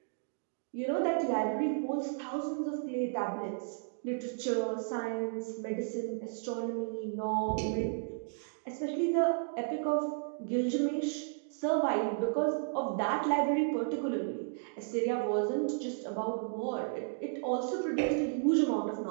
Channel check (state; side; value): silent; left; digital silence